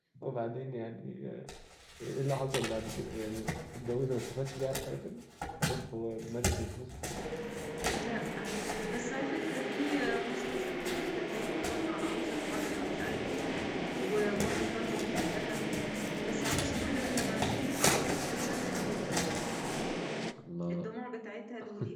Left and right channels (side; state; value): both; identical; correlation 1.00